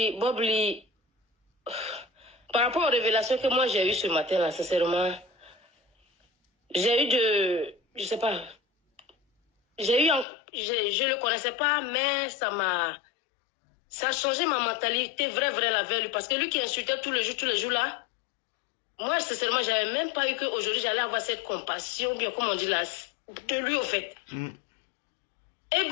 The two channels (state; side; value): drops out; right; at 10.2 s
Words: par rapport aux révélations que moi j'ai eues ce matin, là, sincèrement, j'ai eu je sais pas, je le connaissais pas, mais ça a changé ma mentalité, vraie la veille, parce que lui qui insultait tous les jours là, moi, sincèrement, j'avais même pas eu qu'aujourd'hui j'allais avoir cette compassion, bien comme on dit là, de lui au fait. Et